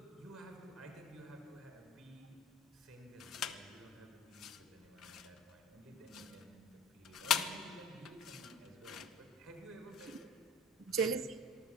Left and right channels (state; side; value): normal; both; correlation 0.39